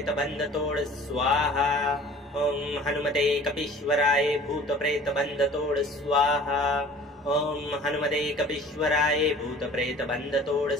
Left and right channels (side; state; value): both; normal; correlation 0.47